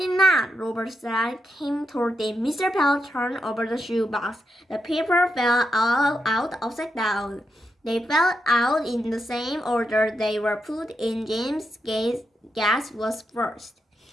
not," Robert said. Cam told him. Mr. Bell turned over the shoebox. The paper fell out upside down. They fell out in the same order they were put in. James' guess was first.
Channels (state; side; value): normal; both; correlation 0.84